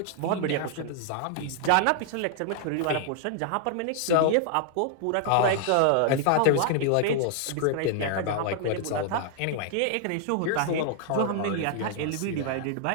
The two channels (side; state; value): both; different; correlation 0.00